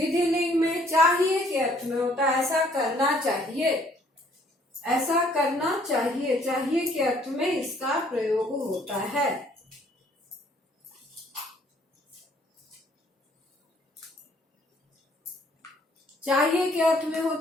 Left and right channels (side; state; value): both; normal; correlation 0.62